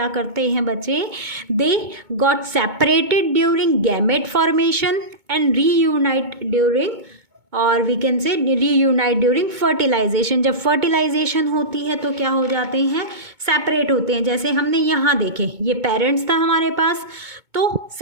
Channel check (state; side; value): late; left; 2.2 ms